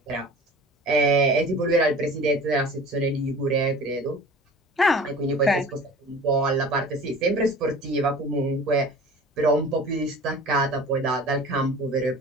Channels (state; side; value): normal; both; correlation 0.42